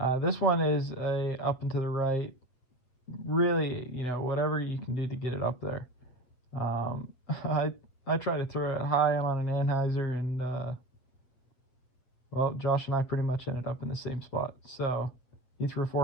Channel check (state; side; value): late; right; 7.9 ms